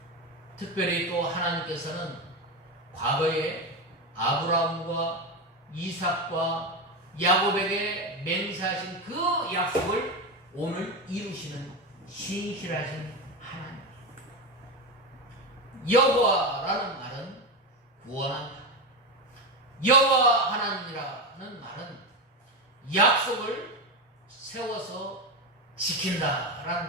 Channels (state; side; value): normal; both; correlation 0.15